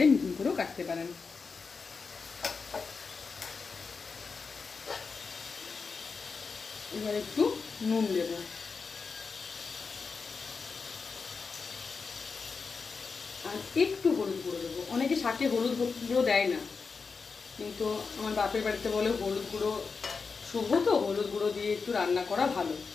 মিহি করেও কাটতে পারেন। এবার একটু নুন দেব, আর একটু হলুদ গুঁড়ো দেবো। অনেকে শাকে হলুদ গুঁড়ো দেয় না, কিন্তু আমার বাপের বাড়িতে বলে হলুদ গুঁড়ো শুভ, তো হলুদ গুঁড়ো দিয়ে একটু রান্না করা ভালো,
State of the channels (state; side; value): quieter; right; 4.9 dB